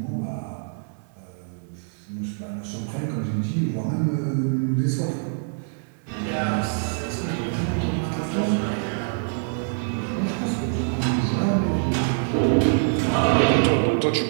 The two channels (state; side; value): silent; left; digital silence